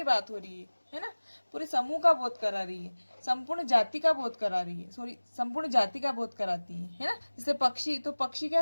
बात हो रही है ना। पूरे समूह का बोध करा रही है, संपूर्ण जाति का बोध करा रही है, संपूर्ण जाति का बोध कराती है ना। जैसे पक्षी, तो पक्षी क्या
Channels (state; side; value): inverted; both; correlation -1.00